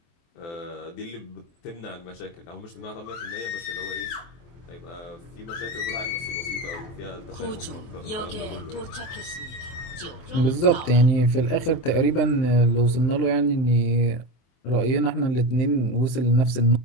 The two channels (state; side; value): late; right; 24 ms